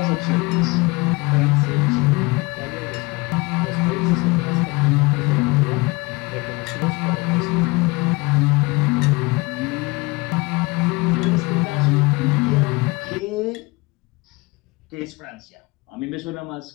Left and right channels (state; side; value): quieter; right; 24.6 dB